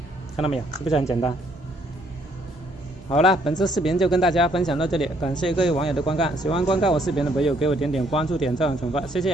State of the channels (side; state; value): both; normal; correlation 0.67